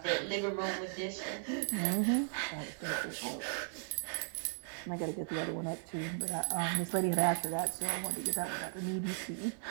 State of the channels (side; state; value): left; silent; 53 dB below the other